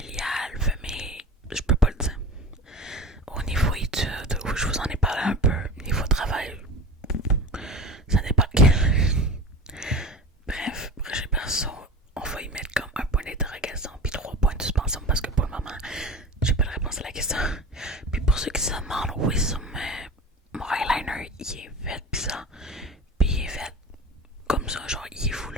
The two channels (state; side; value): normal; both; correlation 0.34